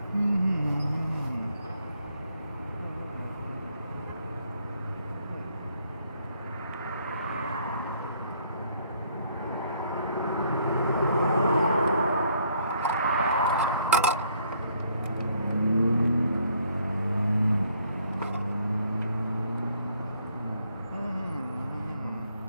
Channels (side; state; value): both; inverted; correlation -0.66